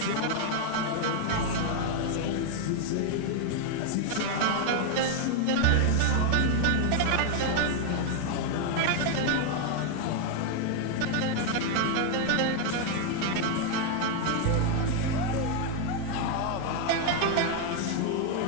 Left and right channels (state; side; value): different; both; correlation 0.01